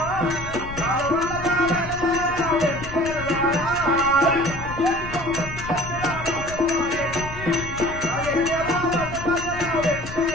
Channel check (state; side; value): noise; left; rumble, 11 dB below the sound